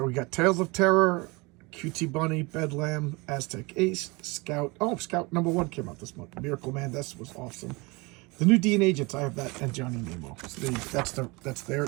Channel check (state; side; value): quieter; left; 25.9 dB